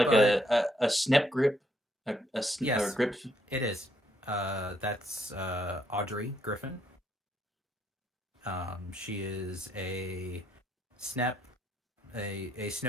a snap grip? Yes, or grip? it is. That's Audrey Griffin. She is a snap a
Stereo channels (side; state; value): both; normal; correlation 0.72